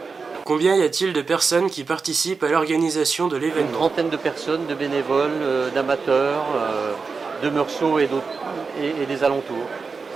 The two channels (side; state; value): left; quieter; 4.8 dB